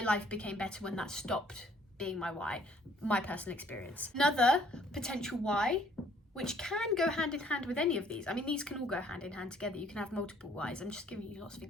became better when that stopped being my why, my personal experience. Another potential why, which can go hand in hand with any of these. I mean, these can all go hand in hand together. You can have multiple whys. I'm just giving you lots of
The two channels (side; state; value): both; normal; correlation 0.61